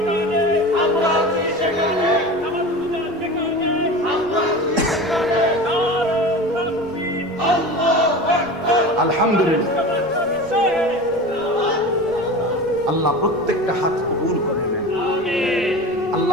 আলহামদুলিল্লাহ, আল্লাহ প্রত্যেকটা হাত কবুল করে নেন।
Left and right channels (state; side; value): noise; left; rumble, 26 dB below the sound